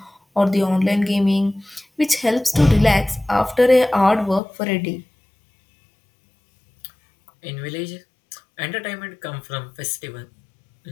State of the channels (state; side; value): drops out; right; at 4.4 s